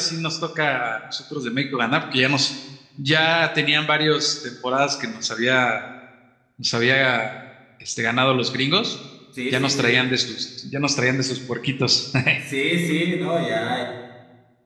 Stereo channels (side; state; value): both; identical; correlation 1.00